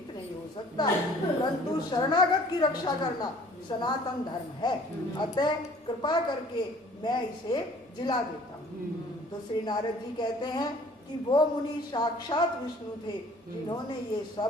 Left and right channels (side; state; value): both; normal; correlation 0.53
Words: नहीं हो सकता। परंतु शरणागत की रक्षा करना सनातन धर्म है, अतः कृपा करके मैं इसे जिला देता हूँ। तो श्री नारद जी कहते हैं कि वो मुनि साक्षात विष्णु थे जिन्होंने ये